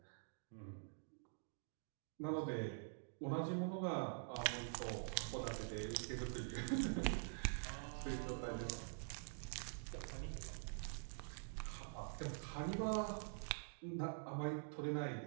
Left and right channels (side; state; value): left; silent; digital silence